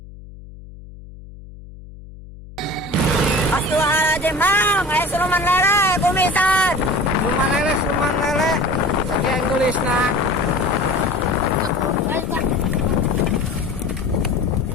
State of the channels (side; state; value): left; noise; hum, 17 dB below the sound